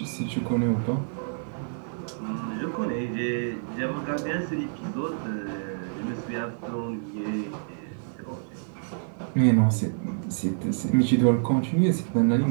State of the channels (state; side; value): silent; left; 59 dB below the other